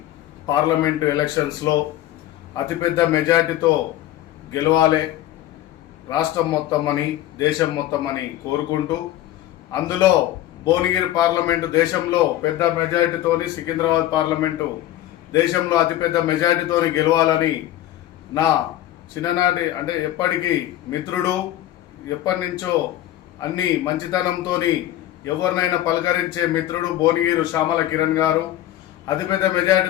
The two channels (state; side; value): quieter; right; 13.6 dB